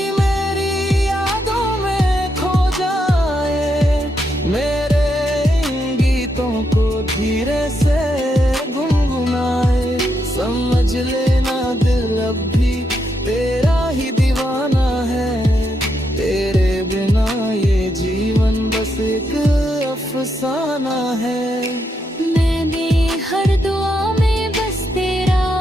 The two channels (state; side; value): normal; both; correlation 0.80